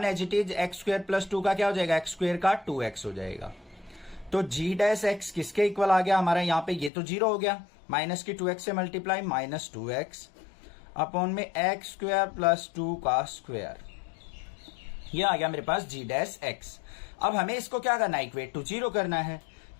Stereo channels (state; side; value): drops out; right; at 6.9 s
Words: एज इट इज, x² + 2 का क्या हो जाएगा x² का 2x हो जाएगा। तो g'(x) किसके इक्वल आ गया हमारा, यहाँ पे ये तो 0 हो गया, माइनस की 2x से मल्टीप्लाई -2x अपॉन में x² + 2 का स्क्वायर, ये आ गया मेरे पास g'(x). अब हमें इसको क्या करना है, इक्वेट टू 0 करना है,